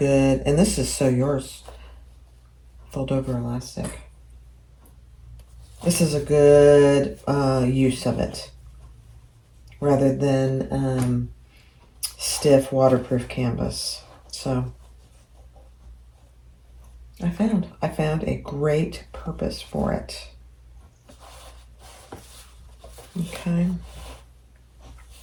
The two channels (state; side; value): identical; both; correlation 1.00